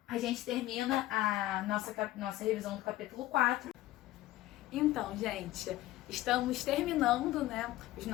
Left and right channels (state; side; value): quieter; right; 15.9 dB